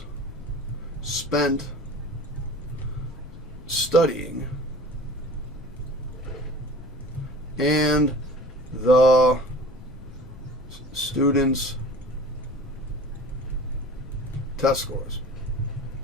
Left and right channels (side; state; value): left; noise; rumble, 17 dB below the sound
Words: spent studying and the students' test scores.